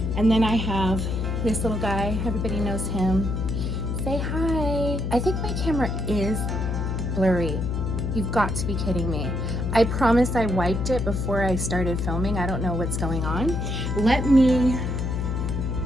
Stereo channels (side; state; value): left; noise; hum, 1 dB below the sound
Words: And then I have this little guy, everybody knows him. Say hi. I think my camera is blurry. You've got to be kidding me. I promise I wiped it before I started filming. I don't know what's going on. Let me